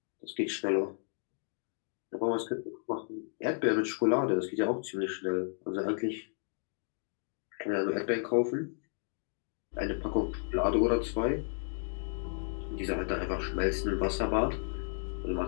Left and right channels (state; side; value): silent; right; 56 dB below the other